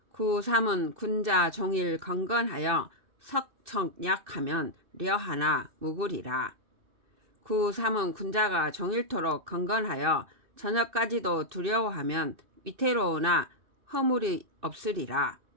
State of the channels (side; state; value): left; late; 2.6 ms